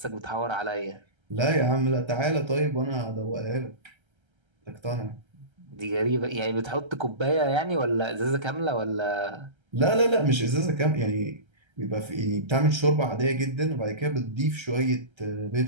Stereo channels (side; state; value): left; late; 1.3 ms